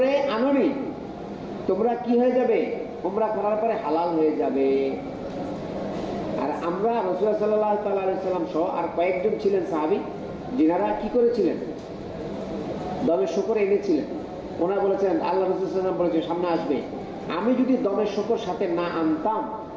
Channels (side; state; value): both; identical; correlation 1.00